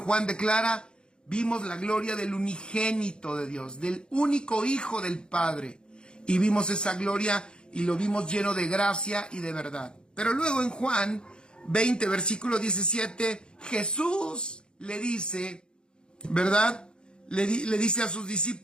declara, vimos la gloria del unigénito de Dios, del único Hijo del Padre, y vimos esa gloria y lo vimos lleno de gracia y de verdad. Pero luego en Juan 20, versículo 17, Jesús le dice, ¿verdad? Le dice a sus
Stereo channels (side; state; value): right; late; 0.050 ms